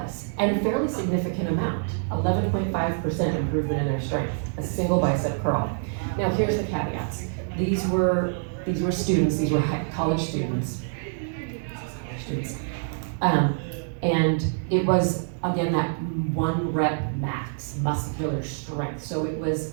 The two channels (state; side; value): silent; left; digital silence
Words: and a fairly significant amount, 11.5% improvement in their strength, a single bicep curl. Now here's the caveats. These were students, these were college students. And it was, again, that 1 rep max muscular strength, so it was